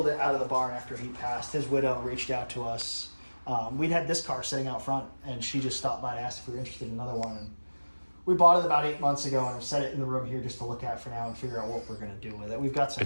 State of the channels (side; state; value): both; inverted; correlation -1.00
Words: it out of the barn after he passed. His widow reached out to us. We'd had this car sitting out front, and she just stopped by and asked if we were interested in another one. And we bought it about 8 months ago, and I've set it in the room here just to look at for now and figure out what we're going to do with it. We've got some